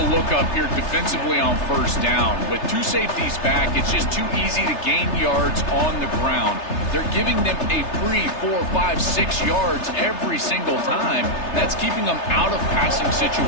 look up here defensively on first down. With two safeties back, it's just too easy to gain yards on the ground. They're giving them a free 4, 5, 6 yards every single time. That's keeping them out of passing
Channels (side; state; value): right; late; 3.3 ms